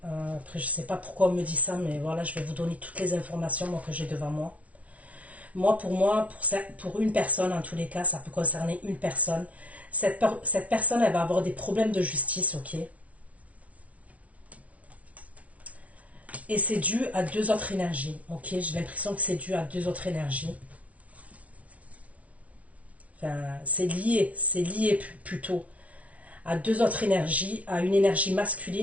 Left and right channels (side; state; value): left; late; 0.066 ms